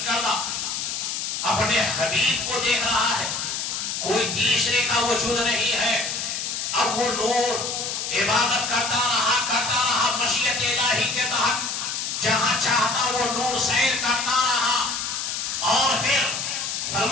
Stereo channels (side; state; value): left; noise; hiss, 3 dB below the sound